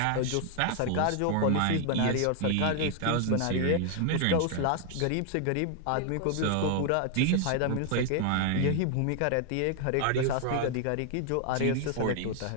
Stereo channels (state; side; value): different; both; correlation 0.00